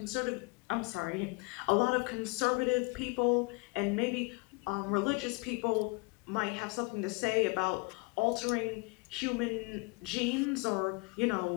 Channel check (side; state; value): right; quieter; 27.9 dB